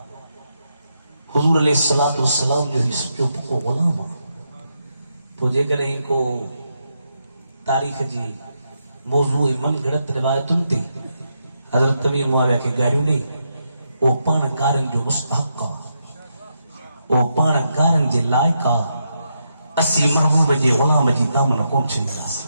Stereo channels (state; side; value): inverted; both; correlation -0.82